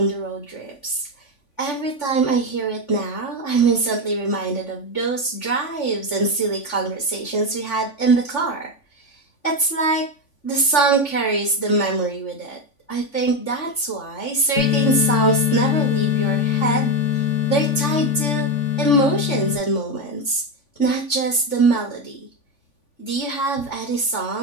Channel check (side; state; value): right; late; 3.5 ms